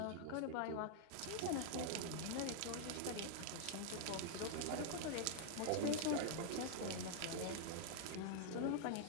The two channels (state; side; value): different; both; correlation -0.01